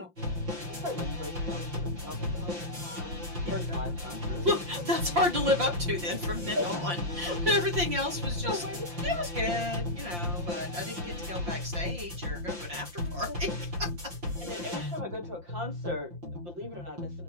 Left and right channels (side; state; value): left; late; 5.7 ms